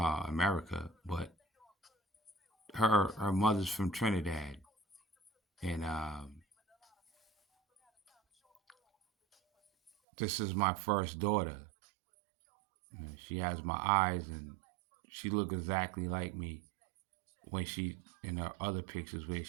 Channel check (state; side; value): drops out; left; at 9.9 s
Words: but her mother's from Trinidad, and this is my first daughter. She has my eyes, and she look exactly like me when she in her other pictures where